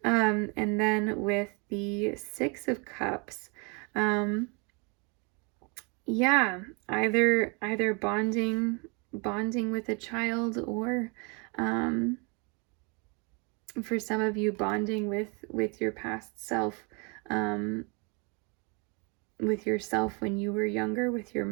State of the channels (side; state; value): left; quieter; 32.2 dB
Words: And then with the Six of Cups, yeah, either bonding with a child, or um, for some of you, bonding with your past self, um, with yourself when you were younger, with your